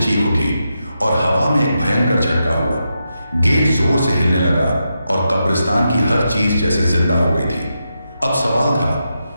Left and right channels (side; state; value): both; inverted; correlation -0.86